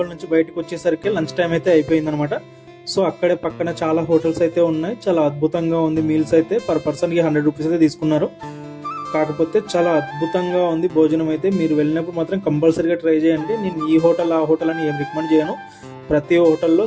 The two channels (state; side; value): identical; both; correlation 1.00